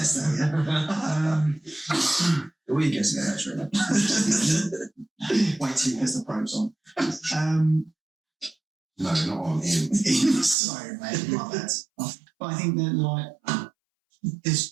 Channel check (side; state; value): left; drops out; at 10.6 s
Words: that. that. The way you guess it, actually. Wait till he has the probes on. No, not on him. Sorry, mate, my bad. But I think that, like,